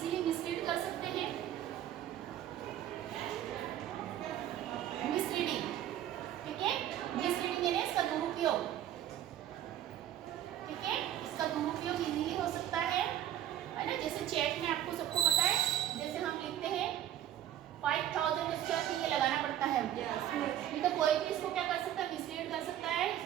मिसलीड कर सकते हैं, मिसलीडिंग। ठीक है, मिसलीडिंग यानी इसका दुरुपयोग। ठीक है, इसका दुरुपयोग इजीली हो सकता है ना, जैसे चेक में आपको सबको पता है, जैसे हम लिखते हैं 5000, उसके बाद ये लगाना पड़ता है, नहीं तो कोई भी इसको क्या कर सकता है, मिसलीड कर सकता है,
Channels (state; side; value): quieter; left; 11.7 dB